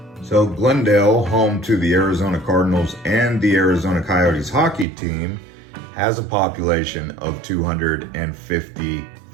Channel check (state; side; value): drops out; left; at 4.9 s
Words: So Glendale, home to the Arizona Cardinals and the Arizona Coyotes Hockey team, has a population of